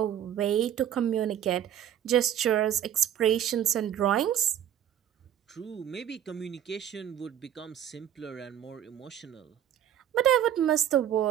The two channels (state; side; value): quieter; left; 10.3 dB